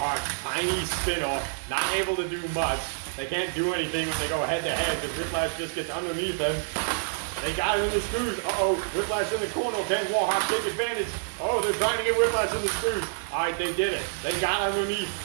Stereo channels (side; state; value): left; silent; digital silence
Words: tiny spinner, not able to do much. They can't do anything when they go head to head because Whiplash just gets underneath them. They got him in the screws. Uh-oh, Whiplash in the corner. Can Warhawk take advantage? Oh, they're trying to get Whiplash in the screws. All right, they did it. They got underneath,